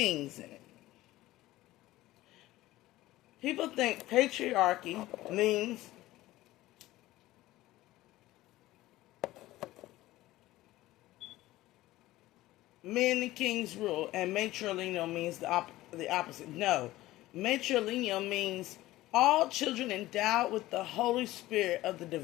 in it. People think patriarchy means men and kings rule, and matrilineal means the opposite. No. Matrilineal means all children endowed with the Holy Spirit of the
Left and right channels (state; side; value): quieter; right; 16.8 dB